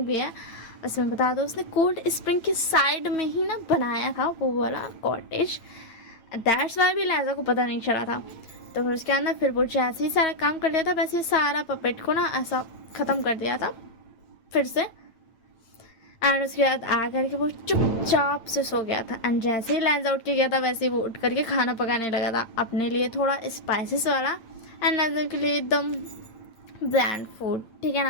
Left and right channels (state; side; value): late; right; 8.9 ms